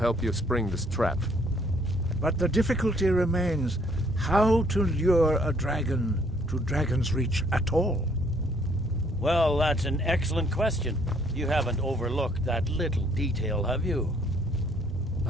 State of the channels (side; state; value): both; normal; correlation 0.64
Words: you spring this trap. But the difficulty remains how to lure a dragon to Dragon's Reach at all. Well, that's an excellent question. You haven't overlooked that little detail, have you?